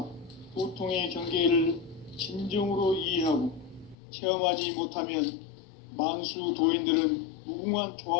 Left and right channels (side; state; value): right; drops out; at 4.0 s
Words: 도통의 경계를 진정으로 이해하고 체험하지 못하면 만수 도인들은 무궁한